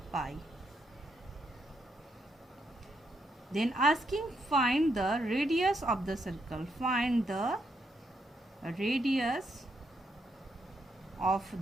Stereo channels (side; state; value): both; normal; correlation 0.79